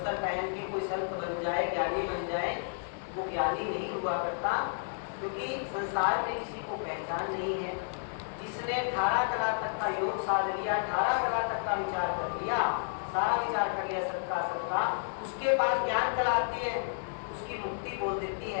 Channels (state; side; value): silent; right; 57 dB below the other